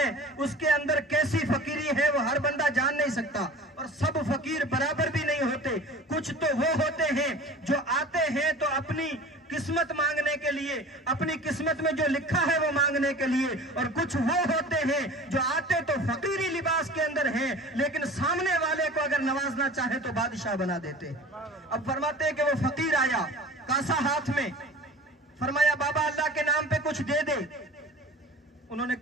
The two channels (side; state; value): both; normal; correlation 0.40